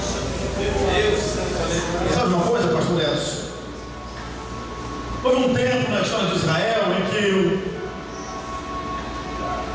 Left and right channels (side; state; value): both; identical; correlation 1.00